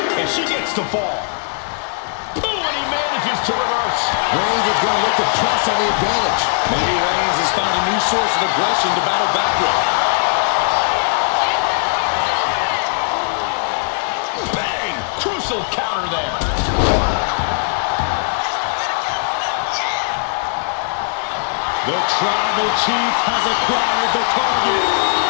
and she gets the fall. Oh, and he manages to reverse. Reigns is going to look to press on the advantage. Maybe Reigns has found a new source of aggression to battle back with. Bang! Crucial counter there. The Tribal Chief has acquired the target.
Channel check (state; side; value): silent; right; 67 dB below the other